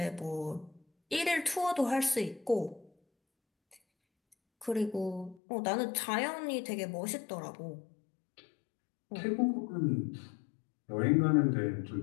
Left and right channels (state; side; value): drops out; right; at 5.4 s